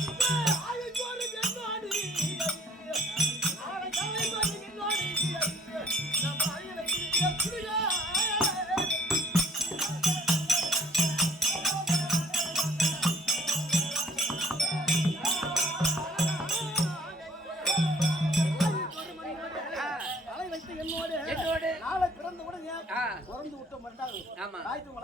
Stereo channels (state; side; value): normal; both; correlation 0.58